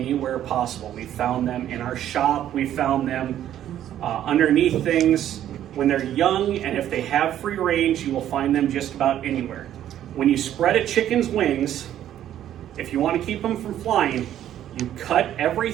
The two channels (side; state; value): left; quieter; 11.4 dB